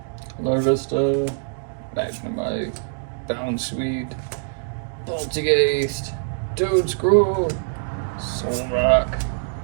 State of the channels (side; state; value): left; silent; digital silence